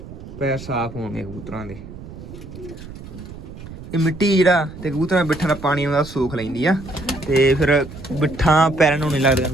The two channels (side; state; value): right; noise; rumble, 14 dB below the sound